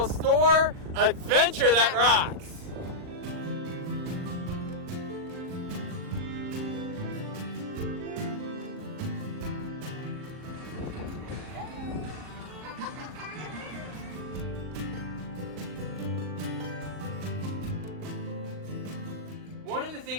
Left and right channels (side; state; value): left; late; 39 ms